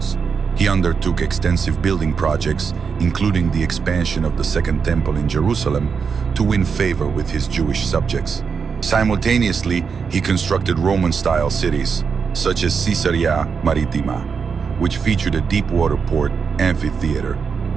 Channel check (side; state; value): left; quieter; 5.9 dB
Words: He undertook extensive building projects, including the expansion of the Second Temple in Jerusalem, to win favor with his Jewish subjects. Simultaneously, he constructed Roman-style cities, such as Caesarea Maritima, which featured a deep-water port, amphitheater,